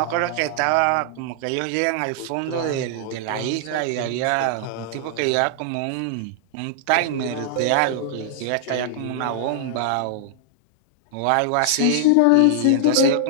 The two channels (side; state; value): both; different; correlation -0.01